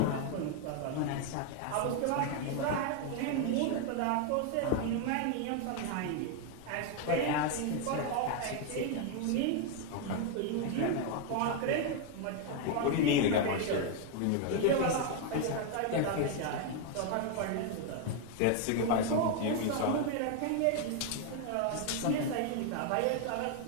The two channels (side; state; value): both; different; correlation 0.01